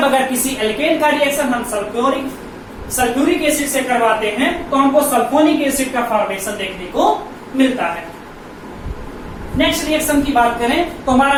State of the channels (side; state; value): both; identical; correlation 1.00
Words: अगर किसी एल्केन का रिएक्शन हम सल्फ्यूरिक एसिड से करवाते हैं तो हमको सल्फोनिक एसिड का फॉर्मेशन देखने को मिलता है। नेक्स्ट रिएक्शन की बात करें तो